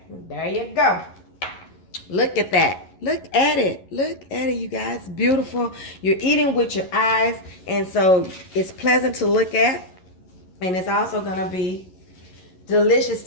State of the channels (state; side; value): late; right; 11 ms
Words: There you go. Look at that. Look at it. Look at it, you guys. Beautiful. You're eating with your eyes, and so it's pleasant to look at, and it's also going to be delicious